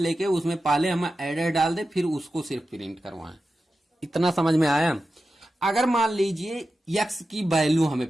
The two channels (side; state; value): both; normal; correlation 0.92